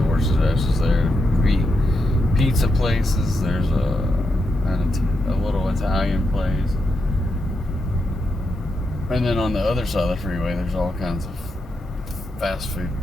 there. Pizza places. There's a little Italian place. And then on the other side of the freeway, there's all kinds of fast food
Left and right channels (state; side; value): normal; both; correlation 0.85